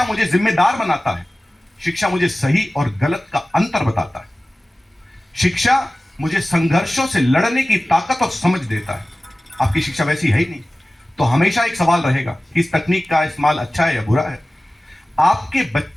मुझे जिम्मेदार बनाता है, शिक्षा मुझे सही और गलत का अंतर बताता है, शिक्षा मुझे संघर्षों से लड़ने की ताकत और समझ देता है। आपकी शिक्षा वैसी है ही नहीं, तो हमेशा एक सवाल रहेगा कि इस तकनीक का इस्तेमाल अच्छा है या बुरा है। आपके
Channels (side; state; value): both; normal; correlation 0.97